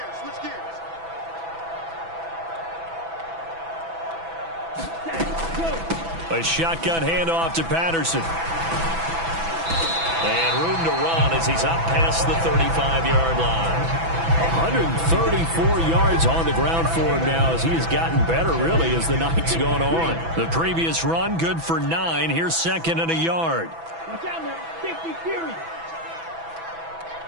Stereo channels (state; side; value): late; left; 6.0 ms